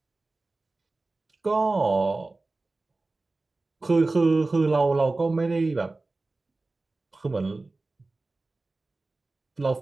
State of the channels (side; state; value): left; quieter; 3.3 dB